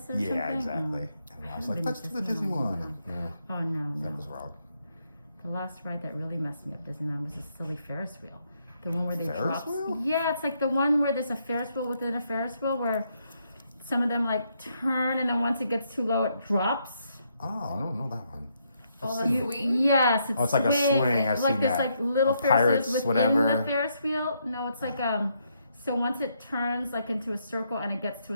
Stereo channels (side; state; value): both; inverted; correlation -0.76